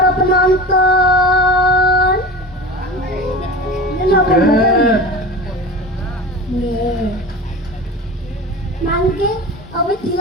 penonton. Sugeng. Nggih. Mangke awit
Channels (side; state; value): both; normal; correlation 0.32